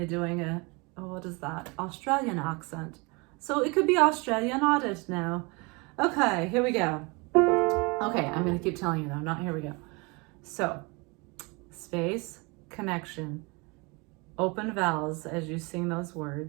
doing a, what is that, Australian accent. So it could be Australian audit now. Okay, here we go. Okay, I'm gonna keep telling you though, not here we go. So space, connection, open vowels as you sing those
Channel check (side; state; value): left; quieter; 28.4 dB